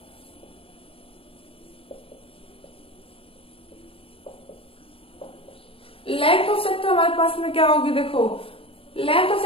Length of sector हमारे पास में क्या होगी, देखो लेंथ ऑफ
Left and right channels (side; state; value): right; late; 0.27 ms